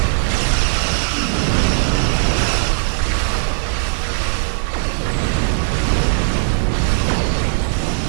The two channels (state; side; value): silent; left; digital silence